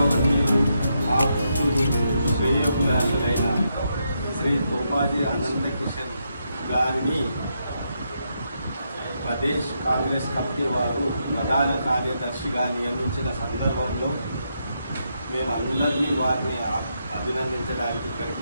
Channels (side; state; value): both; inverted; correlation -0.81